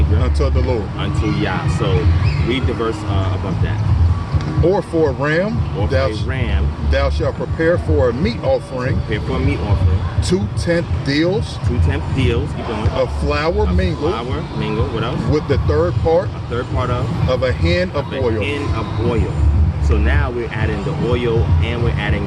Unto the Lord. Unto Yah. So read the verse above that. Or for a ram, thou shalt prepare for a meat offering. 2/10 deals. 2/10 deals. Keep going. Of flour mingled. What else? With the third part. A third part of a hin of oil. A hin of oil. So now we're adding the oil and we're adding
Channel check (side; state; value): both; identical; correlation 1.00